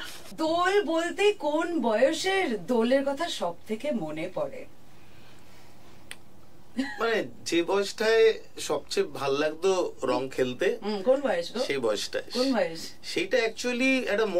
দোল বলতে কোন বয়সের দোলের কথা সব থেকে মনে পড়ে? মানে যে বয়সটায় সবচেয়ে ভাল লাগতো রং খেলতে, কোন বয়স? সেই বয়সটায়। কোন বয়স? সেইটা অ্যাকচুয়ালি একটা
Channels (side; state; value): both; identical; correlation 1.00